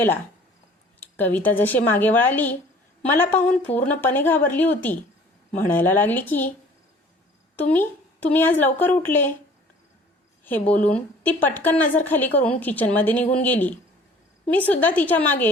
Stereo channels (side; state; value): both; normal; correlation 0.51